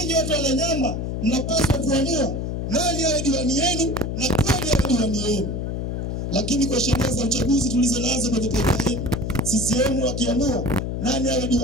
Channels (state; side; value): noise; left; hum, 3 dB below the sound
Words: watu wa Nanyamba mnapaswa kuamua nani awe diwani yenu na kweli awe diwani yenu. Lakini kwa sheria za uchaguzi tulizonazo kwenye taifa hili, CCM wakiamua nani awe